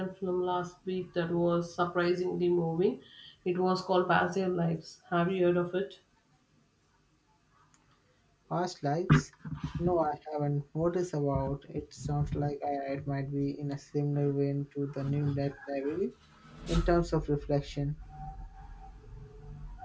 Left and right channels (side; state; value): both; identical; correlation 1.00